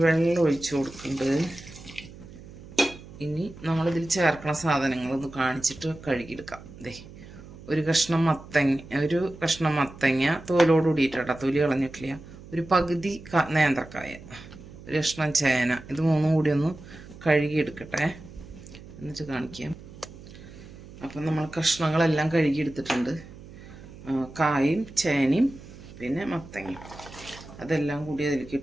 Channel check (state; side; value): noise; right; hum, 17 dB below the sound